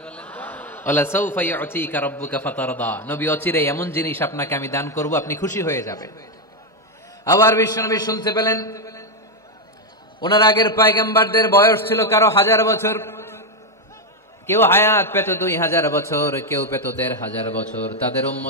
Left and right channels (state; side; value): normal; both; correlation 0.05